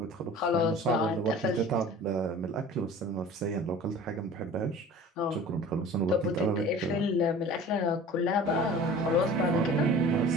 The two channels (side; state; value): both; normal; correlation 0.42